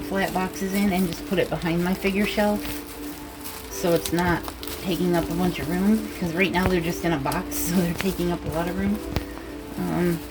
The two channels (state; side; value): identical; both; correlation 1.00